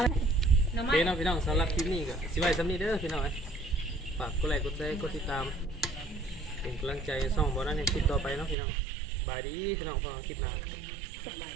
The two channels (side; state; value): left; drops out; at 8.6 s